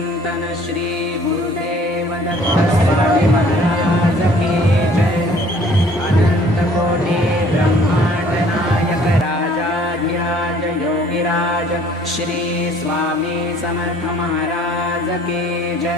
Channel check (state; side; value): normal; both; correlation 0.55